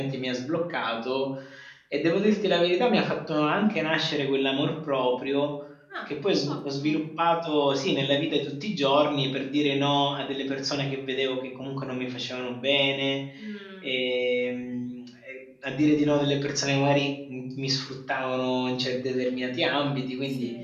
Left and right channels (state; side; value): identical; both; correlation 1.00